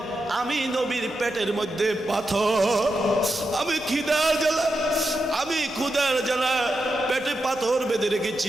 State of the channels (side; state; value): right; noise; rumble, 26 dB below the sound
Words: আমি নবীর পেটের মধ্যে পাথর, আমি ক্ষুধার জ্বালা পেটে পাথর বেঁধে